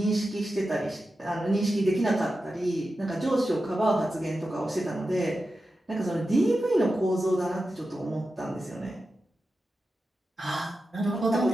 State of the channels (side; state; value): both; normal; correlation 0.91